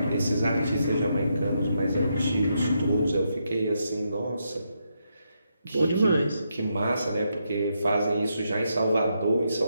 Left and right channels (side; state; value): both; inverted; correlation -0.81